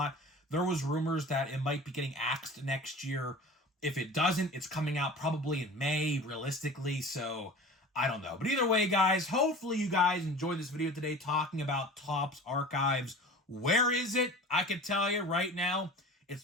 There was rumors that it might be getting axed next year. If it doesn't, it's coming out probably in May, realistically. So I don't know. But either way, guys, hopefully you guys enjoyed this video today talking about Topps Archives. Where is it? I can tell you right now,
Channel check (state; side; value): normal; both; correlation 0.39